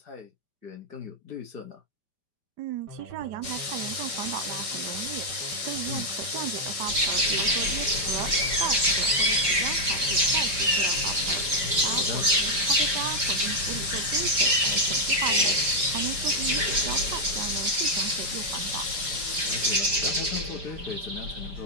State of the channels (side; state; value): left; late; 5.0 ms